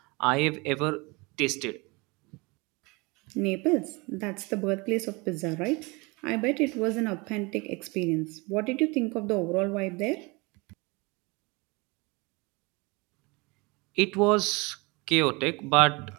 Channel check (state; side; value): quieter; left; 26.7 dB